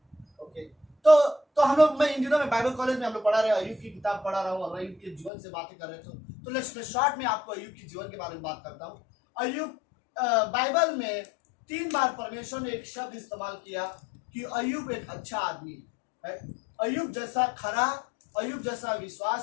ओके। तो हम लोग, मैं इन दिनों में बाइबल कॉलेज में हम लोग पढ़ा रहे हैं, अय्यूब की किताब पढ़ा रहा हूँ और अय्यूब के जीवन से बातें कर रहे थे। तो लेट्स मैं शॉर्ट में आपको अय्यूब के जीवन के बारे में बात करता हूँ। अय्यूब बाइबल में 3 बार परमेश्वर ने एक शब्द इस्तेमाल किया कि अय्यूब एक अच्छा आदमी है। अय्यूब जैसा खरा, अय्यूब जैसा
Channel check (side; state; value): right; drops out; at 5.3 s